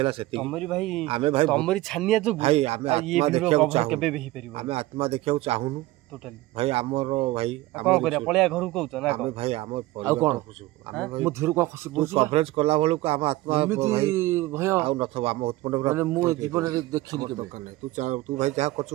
ସେତିକି ତମରି ଭାଇ ଆମେ ଭାଇ ତମରି ଛାନିଆ ଯୋଗୁ ଭାଇ ଆମେ ଆତ୍ମା ଦେଖିବାକୁ ଚାହୁଁ କେବେ ବି ହେଇପାରିବ ଆମେ ଆତ୍ମା ଦେଖିବାକୁ ଚାହୁଁନୁ ଟୋଟାଲି ଭାଇ ଆମର ଭାଇ କ'ଣ କରିବା ପଳେଇବା ଘରକୁ କହୁଛ ନା ଆମେ ଭାଇ ଆମ ଆଉ କ'ଣ ଆମେ ଭାଇ ମୁଁ ଧୀରୁ କ'ଣ ଖସି ତୁ କଭରେଜ କଲା ବେଳକୁ ଆମ ଆତ୍ମା ଏମିତି ଭୟ ଆଉ ନଥିବ ଆମ ଉତ୍ପନ୍ନ ମାନେ ମୁଁ ଜୀବନରେ ଦେଖିନି କେବେ ଦରକାର ନାହିଁ ତୁ ଭାଇ ଯାହା କରୁଛୁ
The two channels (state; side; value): quieter; left; 18.0 dB